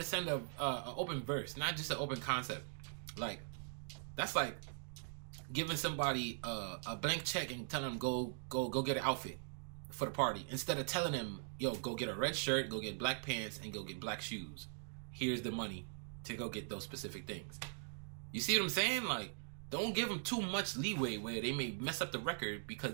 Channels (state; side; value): silent; left; digital silence